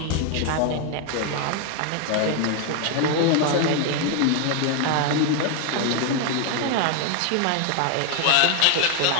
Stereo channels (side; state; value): both; different; correlation 0.01